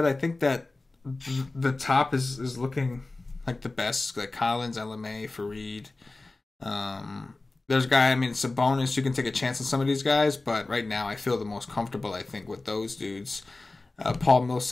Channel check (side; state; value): right; quieter; 3.2 dB